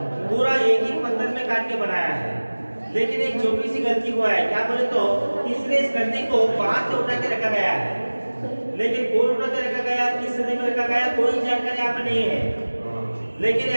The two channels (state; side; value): inverted; both; correlation -1.00